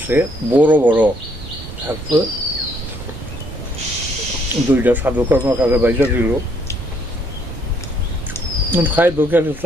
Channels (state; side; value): normal; both; correlation 0.69